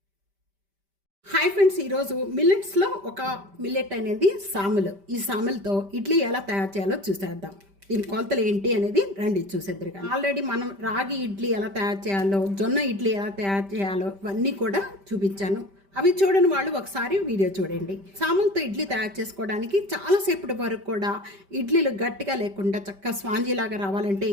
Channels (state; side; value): late; left; 5.1 ms